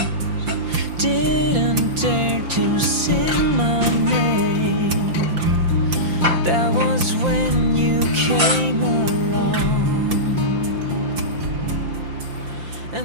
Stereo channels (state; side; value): late; left; 5.8 ms